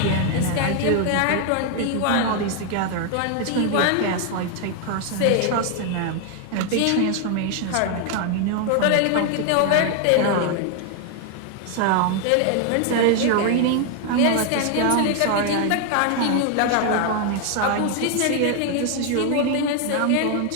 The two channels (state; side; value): different; both; correlation 0.00